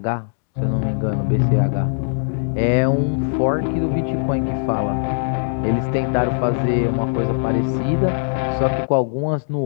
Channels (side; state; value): right; silent; digital silence